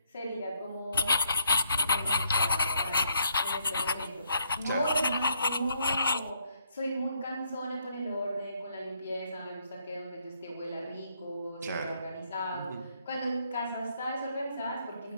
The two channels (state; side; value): inverted; both; correlation -0.72